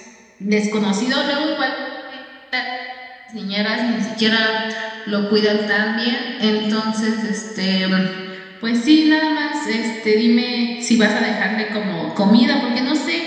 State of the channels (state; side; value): identical; both; correlation 1.00